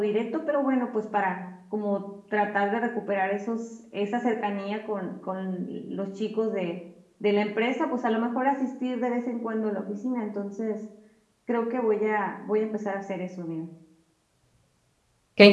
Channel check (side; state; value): both; identical; correlation 1.00